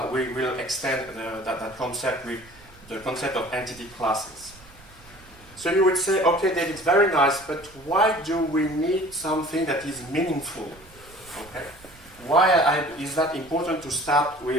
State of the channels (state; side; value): noise; right; rumble, 24 dB below the sound